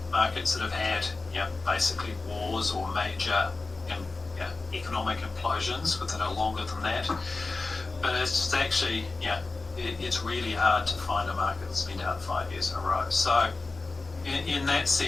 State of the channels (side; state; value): right; quieter; 3.6 dB